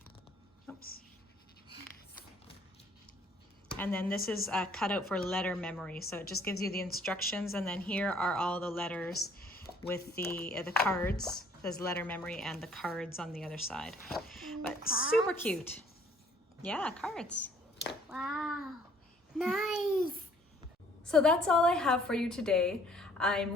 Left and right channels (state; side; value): normal; both; correlation 0.59